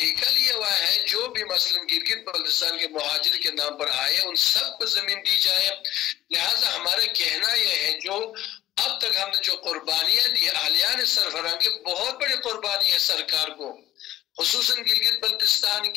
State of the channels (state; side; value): quieter; right; 14.1 dB